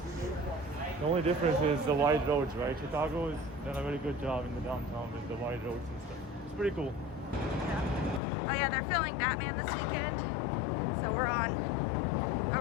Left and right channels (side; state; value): right; drops out; at 8.2 s